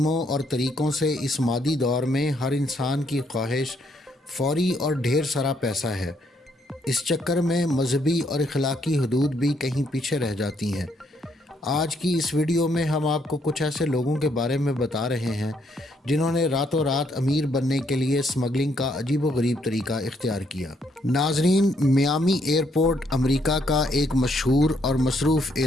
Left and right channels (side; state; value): both; normal; correlation 0.72